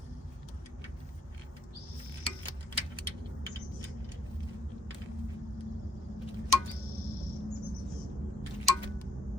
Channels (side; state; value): both; normal; correlation 0.70